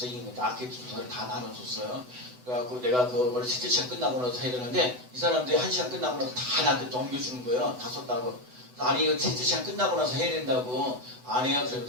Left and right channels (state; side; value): late; left; 8.0 ms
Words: 아케트 조사를 다 나눠줬어요. 그래갖고 내가 그걸 첫째 시간 끝나고 나서 해야 되는데 이 사람들이 1시간 끝나고 나서 다 나한테 넘겨주는 거예요. 다 썼다고. 아니 이거 첫째 시간 끝나고 나서 해야 된다고. 아니에요.